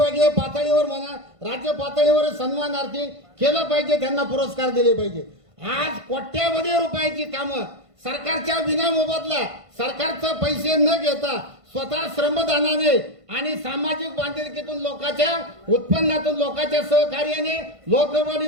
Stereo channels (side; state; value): left; late; 1.5 ms